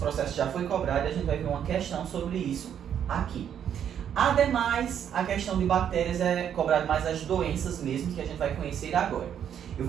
já foi cobrado e a gente vai ver uma questão sobre isso aqui. Ademais, a questão de bactérias é cobrado mais as doenças mesmo, que a gente vai conhecer agora. Eu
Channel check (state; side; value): quieter; left; 9.1 dB